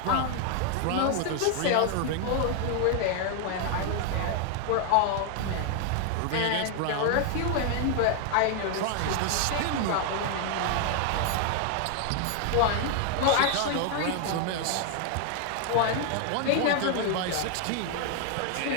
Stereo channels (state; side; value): different; both; correlation 0.00